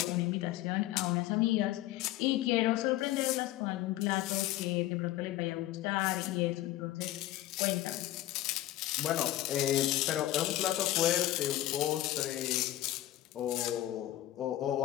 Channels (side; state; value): right; quieter; 14.9 dB